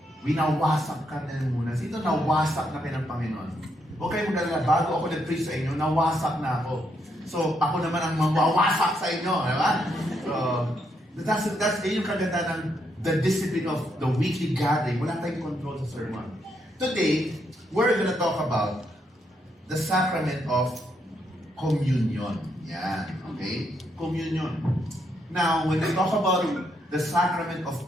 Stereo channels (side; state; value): both; normal; correlation 0.77